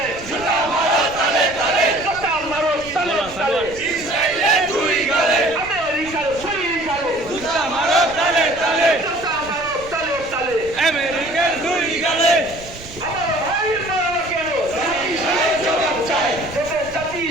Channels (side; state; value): right; noise; rumble, 18 dB below the sound